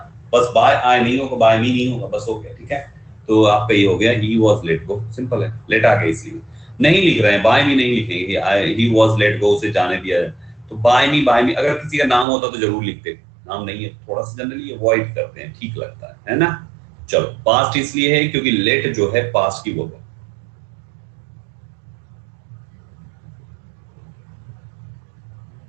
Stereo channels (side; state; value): left; drops out; at 12.2 s